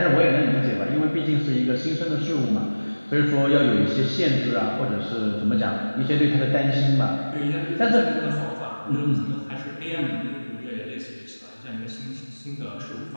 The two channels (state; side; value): inverted; both; correlation -1.00